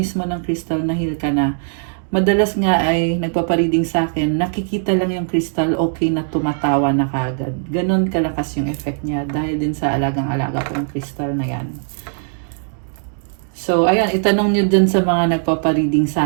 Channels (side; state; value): left; silent; digital silence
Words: ng crystal, nahil ka na. Madalas nga ay nagpapareading sa akin, nakikita lang yung crystal, okay na tumatawa na kagad. Ganon kalakas yung effect niya dahil din sa alagang-alaga ko yung crystal na yan. So, ayan, itanong nyo dun sa mga nagpapareading